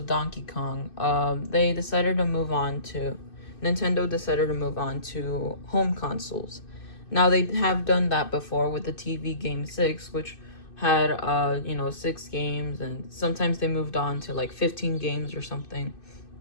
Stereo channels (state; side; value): late; right; 2.6 ms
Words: Donkey Kong, Nintendo decided to move on to home consoles. Now, they have done that before with the TV game 6, which had, 6 games, and sometimes they moved on to like 15 games or something.